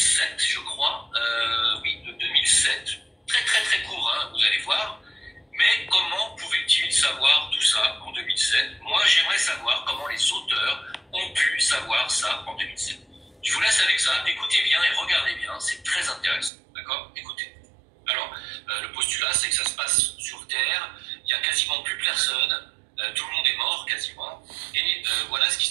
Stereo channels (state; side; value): drops out; left; at 16.5 s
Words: je crois. Oui, de 2007. Très très très court, hein, vous allez voir. Mais comment pouvait-il savoir tout ça en 2007? Moi, j'aimerais savoir comment les auteurs ont pu savoir ça en 2007. Je vous laisse avec ça. Écoutez bien et regardez bien. C'est très intéressant. D'accord? Écoutez. Alors, le postulat, c'est que ça se passe sur Terre. Il n'y a quasiment plus personne. Tout le monde est mort, quasiment. Et voilà ce qui